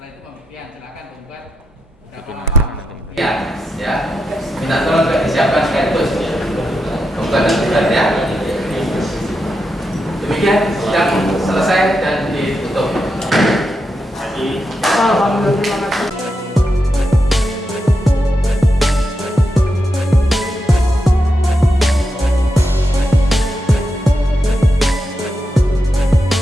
itu pembuktian silakan pembuat berapa Bikin lama nanti. pembuktian ya. Minta tolong juga disiapkan sekaligus pembuat dan tugas ya. Demikian sidang selesai dan ditutup. Alhamdulillah.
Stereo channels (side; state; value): both; normal; correlation 0.86